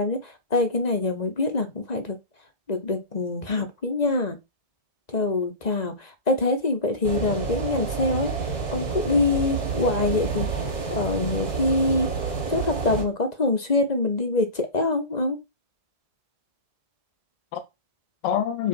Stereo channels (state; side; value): late; right; 1.9 ms